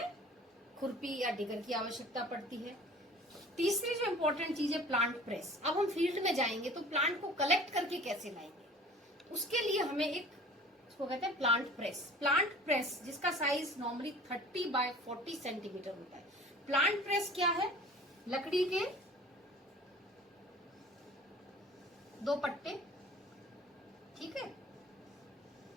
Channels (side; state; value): both; normal; correlation 0.45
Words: खुरपी या डिगर की आवश्यकता पड़ती है। तीसरी जो इम्पोर्टेंट चीज है प्लांट प्रेस। अब हम फील्ड में जाएंगे तो प्लांट को कलेक्ट करके कैसे लाएंगे, उसके लिए हमें एक, उसको कहते हैं प्लांट प्रेस। प्लांट प्रेस जिसका साइज नॉर्मली 30 बाय 40 सेंटीमीटर होता है। प्लांट प्रेस क्या है, लकड़ी के 2 पट्टे, ठीक है,